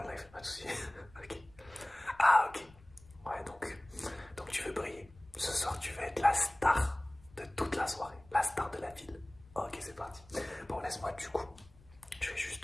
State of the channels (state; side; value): noise; left; rumble, 24 dB below the sound